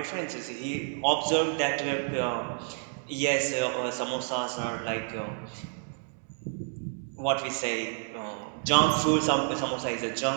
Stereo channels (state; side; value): silent; left; 57 dB below the other